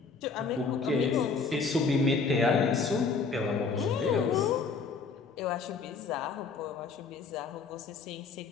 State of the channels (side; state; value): right; quieter; 4.9 dB